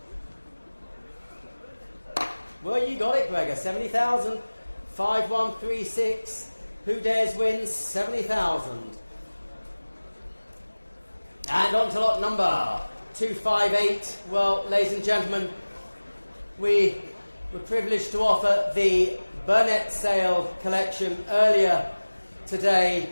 Well, you got it, Gregor. 70,000. 5136. Who dares wins? 70,000. And on to lot number 258. Well, ladies and gentlemen, we were privileged to offer the Burnett Sale collection earlier today.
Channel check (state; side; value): inverted; both; correlation -1.00